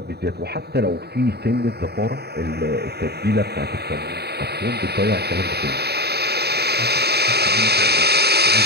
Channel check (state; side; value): late; left; 0.47 ms